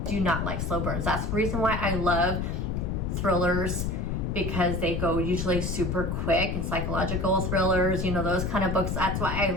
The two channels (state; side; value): noise; left; rumble, 1 dB below the sound